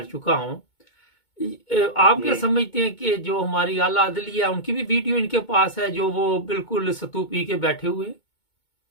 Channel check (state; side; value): late; right; 2.2 ms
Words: चुका हूँ। आप क्या जी समझते हैं कि जो हमारी आला अदलिया उनकी भी वीडियो इनके पास है, जो वो बिल्कुल सतू पी के बैठे हुए हैं?